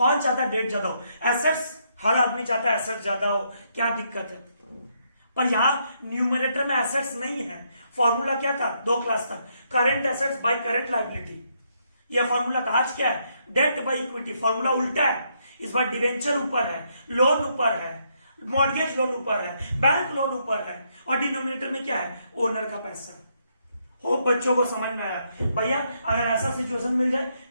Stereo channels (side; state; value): both; inverted; correlation -0.75